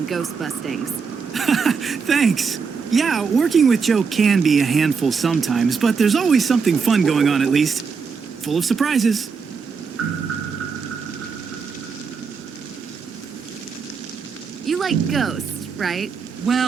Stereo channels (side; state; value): left; quieter; 5.5 dB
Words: ghost bustings. Thanks. Yeah, working with Joe can be a handful sometimes, but there's always something fun going on at least. Full of surprises. You like ghosts, right?